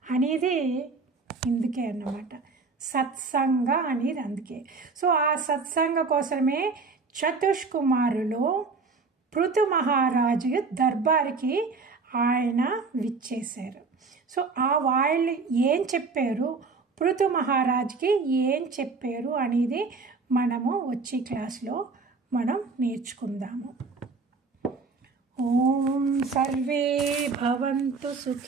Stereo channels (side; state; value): left; quieter; 4.3 dB